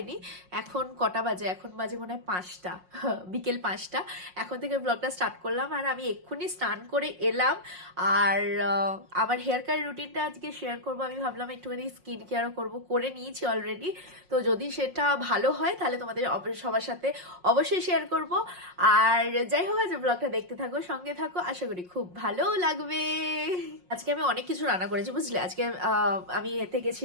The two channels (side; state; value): left; late; 5.5 ms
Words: এখন কটা বাজে? এখন বাজে মনে হয় 5টা, বিকেল 5টা। এখন থেকে ব্লগটা স্টার্ট করলাম আর আমি এক্ষুনি স্নান করে এলাম। আর আমার হেয়ার কেয়ার রুটিনটা আজকে শেয়ার করবো। আমি ভাবলাম একটুখানি স্কিন কেয়ারও করবো, করে নিয়েছি অলরেডি। তো যদি সেটা ভালো হয় তাহলে তোমাদের সবার সাথে অবশ্যই শেয়ার করব। আর যাই হোক, আজ ব্লগটা দেখতে থাকো, সঙ্গে থাকো, আশা করি খুব ভালো লাগবে। আজকে আমি অনেক কিছু রান্না করেছি বুঝলে। আজকে আমি এতে